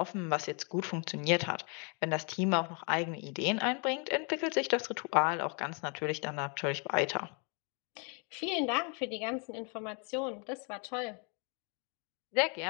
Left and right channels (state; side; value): quieter; right; 36.3 dB